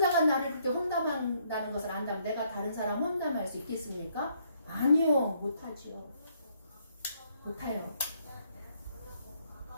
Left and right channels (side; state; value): both; inverted; correlation -0.69